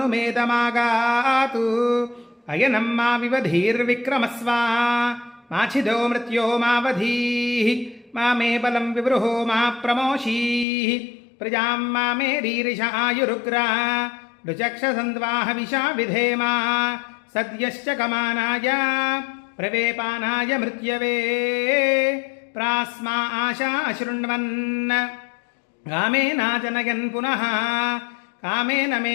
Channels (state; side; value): drops out; right; at 10.7 s